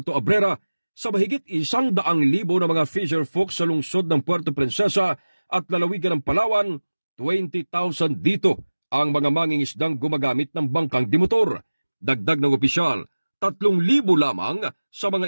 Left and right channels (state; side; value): inverted; both; correlation -1.00